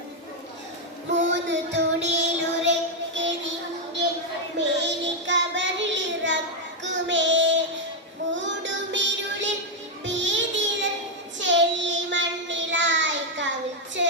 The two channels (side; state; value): both; normal; correlation 0.01